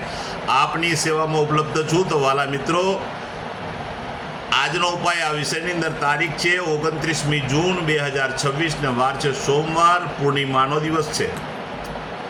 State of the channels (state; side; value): identical; both; correlation 1.00